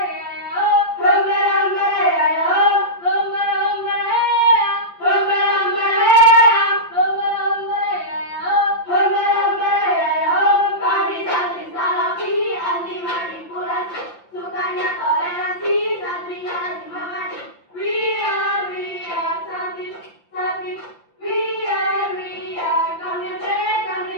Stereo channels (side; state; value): right; late; 5.9 ms